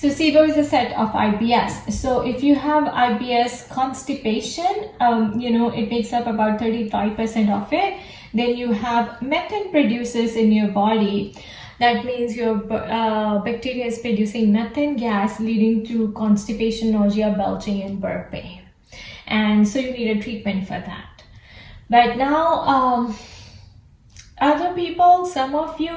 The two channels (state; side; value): identical; both; correlation 1.00